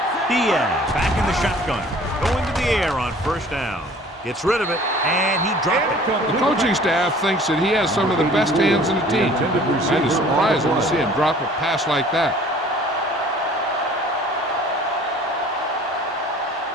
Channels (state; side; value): normal; both; correlation 0.50